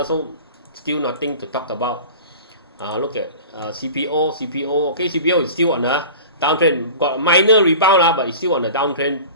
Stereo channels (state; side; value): inverted; both; correlation -0.38